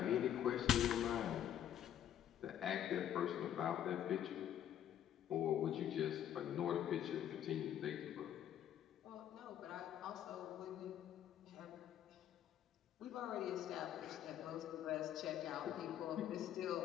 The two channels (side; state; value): right; quieter; 10.5 dB